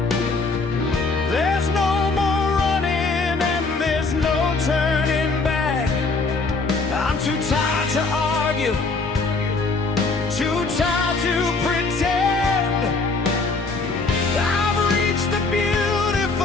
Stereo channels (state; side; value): quieter; right; 3.9 dB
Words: There's no more running and there's no turning back. I'm too tired to argue, too tired to pretend. I've reached the